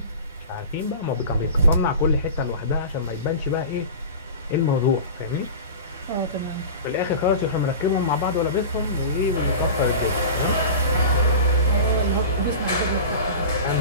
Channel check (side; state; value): both; inverted; correlation -0.32